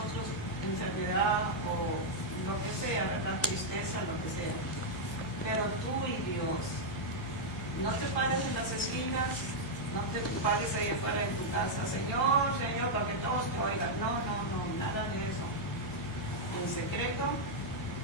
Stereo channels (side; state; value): both; normal; correlation -0.03